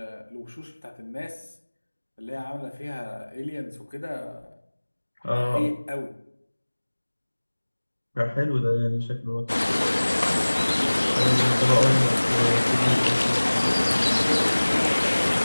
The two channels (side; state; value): both; inverted; correlation -1.00